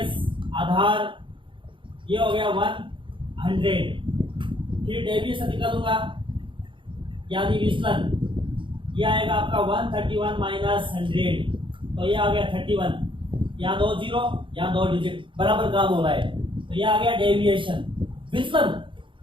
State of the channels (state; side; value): late; left; 0.24 ms